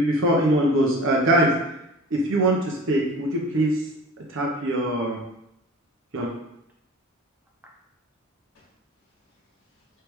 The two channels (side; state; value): both; normal; correlation 0.40